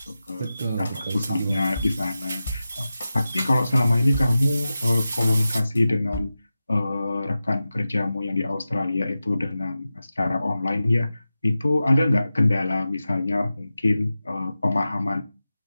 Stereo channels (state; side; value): inverted; both; correlation -0.93